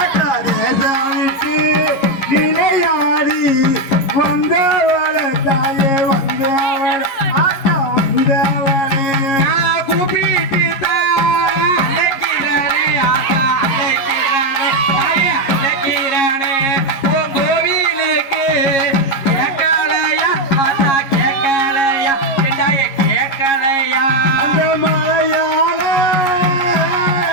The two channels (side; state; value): right; late; 11 ms